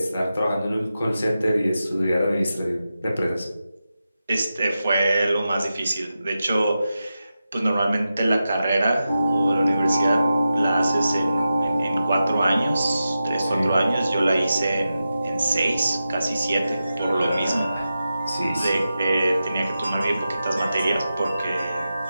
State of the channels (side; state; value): both; inverted; correlation -0.91